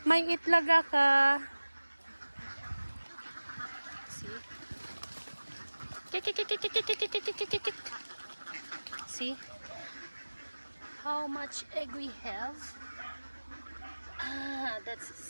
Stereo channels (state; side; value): inverted; both; correlation -1.00